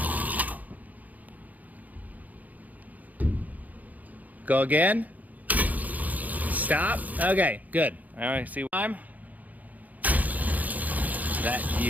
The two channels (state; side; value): late; left; 0.079 ms